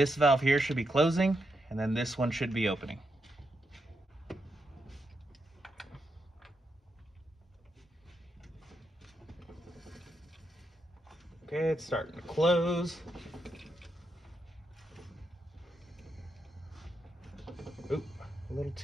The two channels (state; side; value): normal; both; correlation 0.83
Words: valve here should be closing, and then this one should be opening. Okay, it's starting to close. Oop, a little